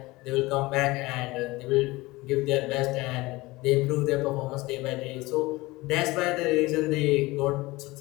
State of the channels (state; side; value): quieter; right; 21.0 dB